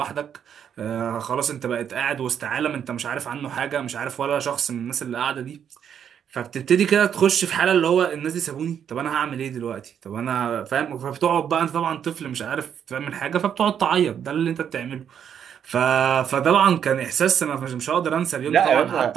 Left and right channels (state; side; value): quieter; left; 8.5 dB